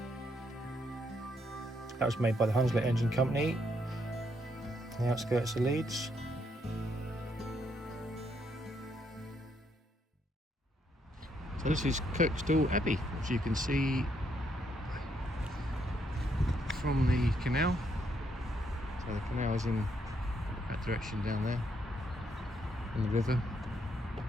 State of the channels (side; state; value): both; normal; correlation 0.75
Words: That was made by the Hunslet Engine Company. the outskirts of Leeds. So this is Kirkstall Abbey, which you can see from the canal. So the canal is in that direction down there, on the river.